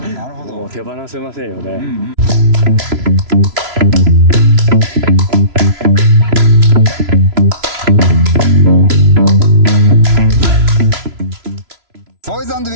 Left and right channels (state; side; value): late; left; 3.0 ms